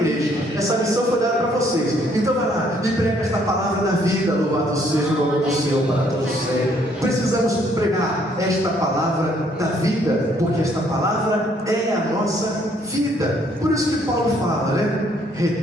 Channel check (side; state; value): both; normal; correlation 0.66